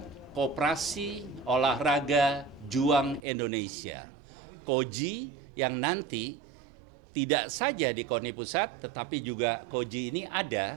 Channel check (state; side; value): drops out; left; at 3.2 s